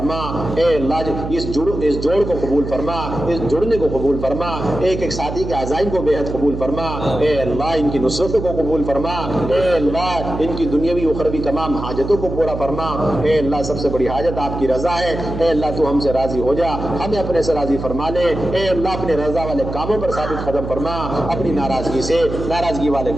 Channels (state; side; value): noise; right; hum, 7 dB below the sound